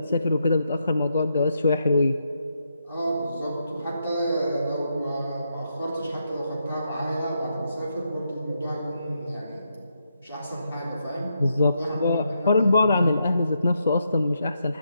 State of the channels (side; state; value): both; inverted; correlation -0.81